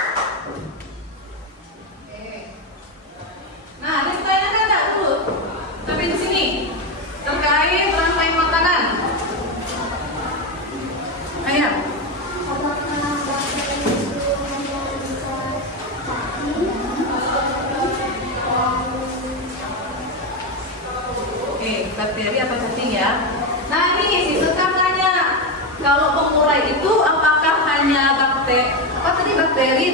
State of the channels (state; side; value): normal; both; correlation 0.11